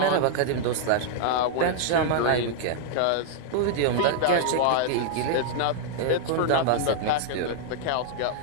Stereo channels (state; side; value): different; both; correlation -0.01